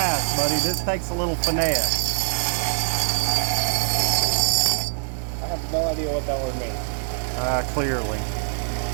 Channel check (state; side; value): silent; left; 57 dB below the other